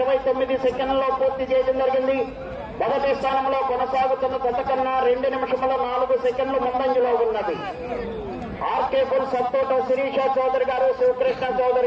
సెకండ్లలో పూర్తి చేయడం జరిగింది. మొదటి స్థానంలో కొనసాగుతున్న జత కన్నా 2 నిమిషముల 4 సెకండ్లు ముందంజలో ఉన్నది. ఆర్కేపుల్ సత్తోట శిరీష చౌదరి గారు, శివకృష్ణ చౌదరి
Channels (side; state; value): both; identical; correlation 1.00